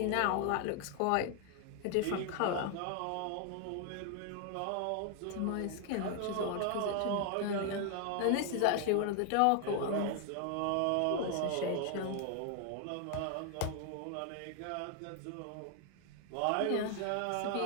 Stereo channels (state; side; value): different; both; correlation 0.00